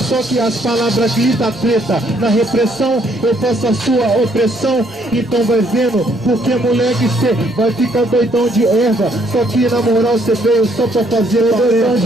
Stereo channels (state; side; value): normal; both; correlation 0.68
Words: que as palavras gritam treta. Na repressão eu faço a sua opressão. Então vai vendo, porque moleque cê vai ficar doidão de erva. Só que na moral cê veio só pra fazer doidão